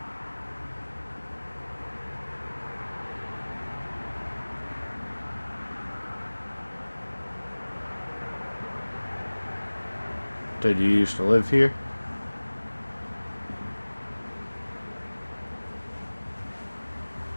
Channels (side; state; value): both; inverted; correlation -1.00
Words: Did you used to live here?